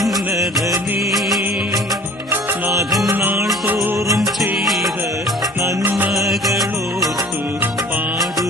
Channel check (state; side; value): normal; both; correlation 0.47